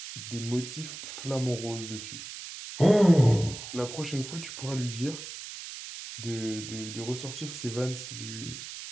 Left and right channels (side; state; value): right; noise; hiss, 10 dB below the sound